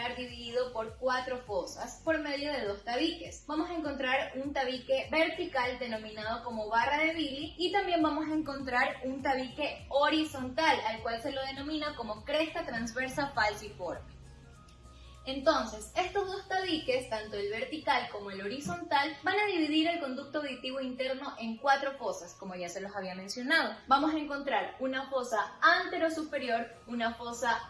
dividido por 4 fosas por medio de 2 tabiques. Vamos a encontrar un tabique vertical denominado como barra de Billy y también vamos a encontrar un tabique horizontal al cual se lo denomina como cresta transversa falciforme. Entonces, estos 2 tabiques, tanto el vertical como el horizontal, van a dividir el conducto auditivo interno en 4 fosas, como ya se los había mencionado. Vamos a encontrar una fosa anterosuperior, una fosa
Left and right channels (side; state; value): both; identical; correlation 1.00